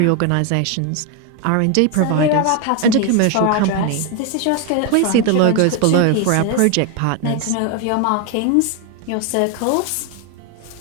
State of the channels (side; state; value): both; different; correlation 0.01